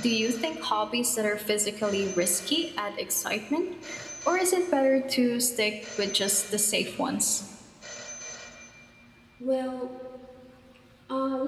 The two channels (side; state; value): both; identical; correlation 1.00